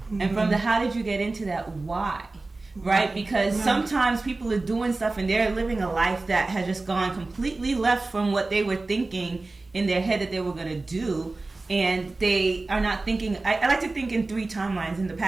And from the how did you get into that, why? Right? Because sometimes people are doing stuff and they're living a life that has just gone completely left from what they were thinking in their head that they were going to do. And they are not thinking, I like to think in 3 timelines, in the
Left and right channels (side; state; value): left; quieter; 3.3 dB